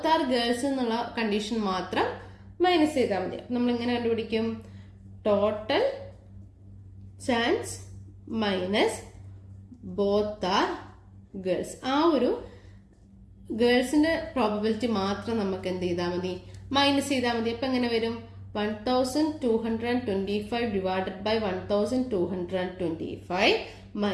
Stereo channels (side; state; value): both; identical; correlation 1.00